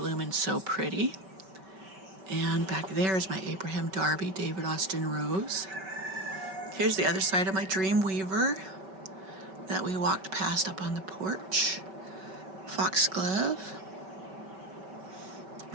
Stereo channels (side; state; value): left; late; 5.2 ms